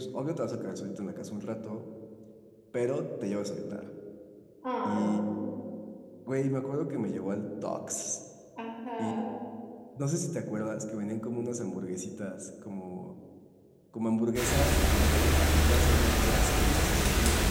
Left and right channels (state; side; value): identical; both; correlation 1.00